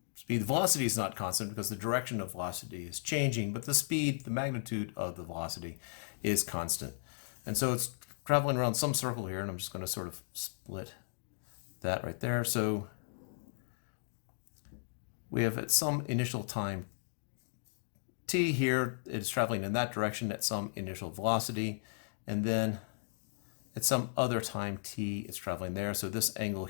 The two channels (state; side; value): silent; right; digital silence